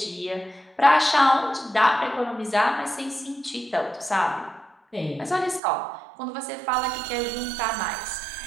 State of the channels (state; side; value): drops out; left; at 5.6 s